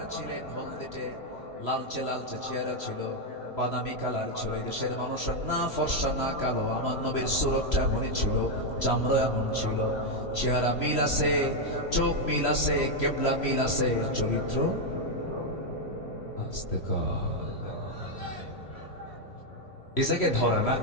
ছিলেন, হলদেটে লালচে লালচে চেহারা ছিল, বাদামি কালার ছিল। এই দেশের মানুষের না ফর্সা না কালো। আমার নবীর সুরতটা এমনই ছিল, চামড়া এমন ছিল। চেহারা মিল আছে, চোখ মিল আছে, কিবলা মিল আছে, চরিত্র আস্তে এসাকে ধরা না,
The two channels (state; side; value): late; right; 3.0 ms